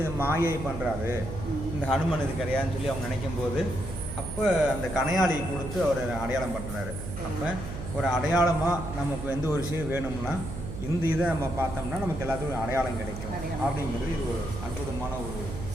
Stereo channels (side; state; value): right; noise; hum, 8 dB below the sound